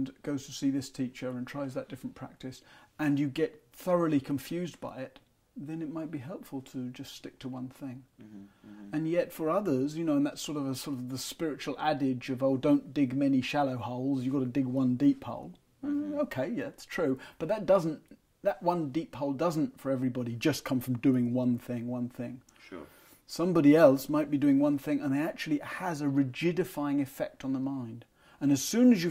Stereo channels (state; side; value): identical; both; correlation 1.00